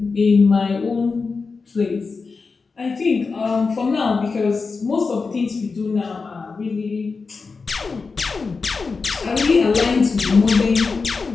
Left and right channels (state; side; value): quieter; right; 4.5 dB